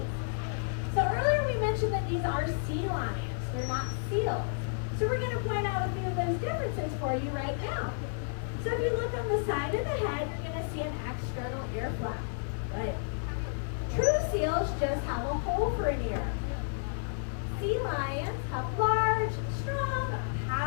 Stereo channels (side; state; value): right; silent; digital silence